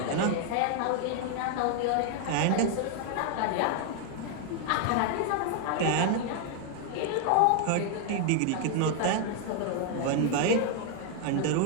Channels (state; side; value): different; both; correlation 0.00